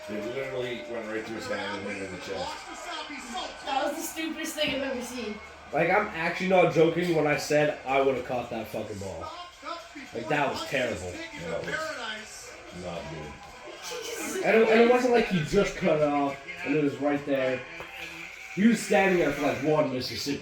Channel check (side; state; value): both; identical; correlation 1.00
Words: They literally went right through his hand and hit him in the chest. That was the stupidest thing I've ever seen. Like, I'm actually not joking when I said I would have caught that fucking ball. Like, that was terrible. Not good. And it wasn't like he just cut it off and it was right there. He was standing there for like one